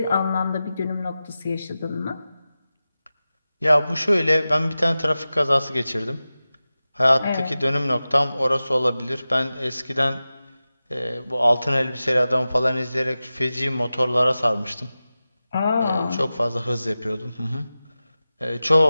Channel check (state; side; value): inverted; both; correlation -0.95